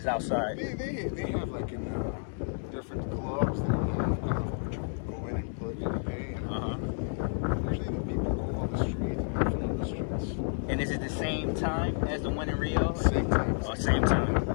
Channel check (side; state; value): right; silent; digital silence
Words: outside. They have like in different clubs, they have Carnival, which you go in and plug and pay. And usually the people go on the street and have fun on the streets. And is it the same time as the one in Rio? Same time. Oh, same time.